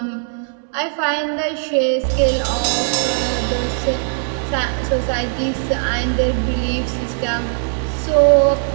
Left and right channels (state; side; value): silent; left; 66 dB below the other